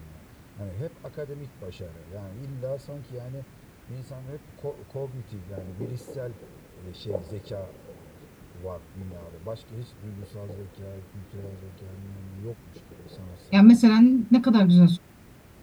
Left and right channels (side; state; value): both; identical; correlation 1.00